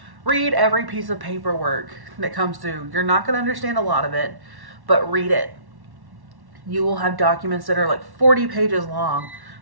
Read every piece of paperwork that comes through. You're not going to understand a lot of it, but read it. You will have documents that are like 40 pages long,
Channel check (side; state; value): left; late; 1.1 ms